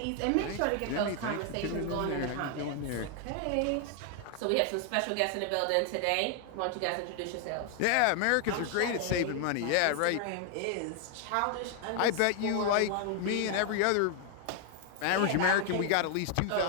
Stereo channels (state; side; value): different; both; correlation 0.00